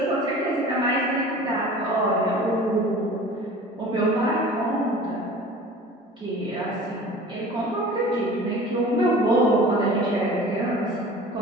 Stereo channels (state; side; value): normal; both; correlation 0.42